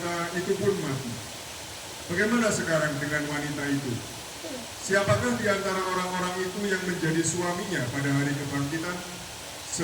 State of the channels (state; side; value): identical; both; correlation 1.00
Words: itu pun mati. Bagaimana sekarang dengan wanita itu? Siapakah di antara orang-orang itu yang menjadi suaminya pada hari kebangkitan?